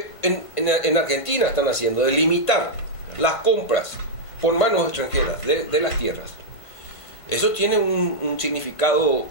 en Argentina están haciendo, de limitar las compras por manos extranjeras de las tierras, eso tiene un significado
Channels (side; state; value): right; late; 1.5 ms